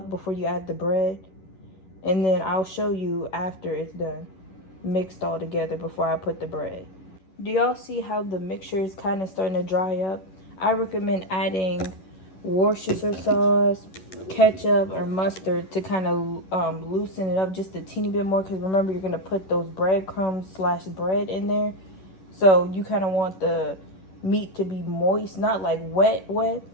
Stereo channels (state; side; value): late; right; 11 ms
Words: before you add the bread, and then I'll show you after it's done, mixed all together before I put the bread. Do y'all see how the mixture is kind of starting to dry up? I recommend adding Worcestershire sauce, ketchup, or mustard to kind of loosen it up just a teeny bit more, because remember, you're going to put those breadcrumbs / bread in there. So you kind of want the meat to be moist, not like wet,